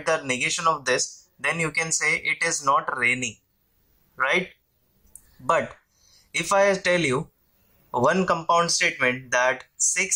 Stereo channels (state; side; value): identical; both; correlation 1.00